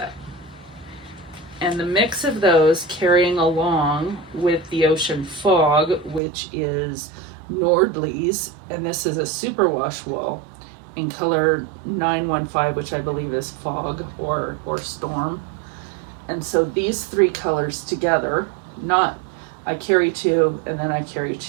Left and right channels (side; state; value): left; drops out; at 6.2 s